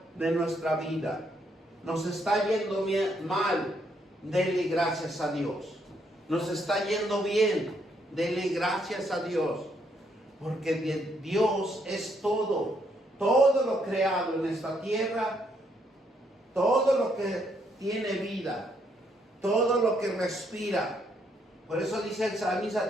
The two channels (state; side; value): normal; both; correlation 0.73